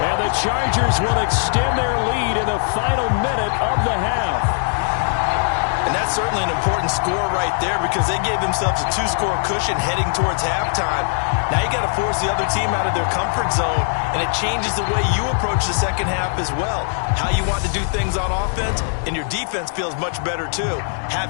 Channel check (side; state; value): right; silent; digital silence